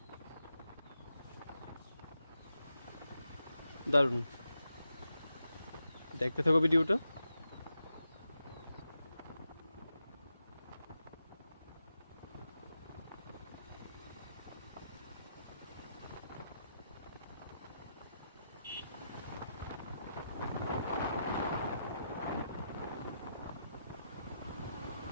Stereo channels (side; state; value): both; inverted; correlation -0.85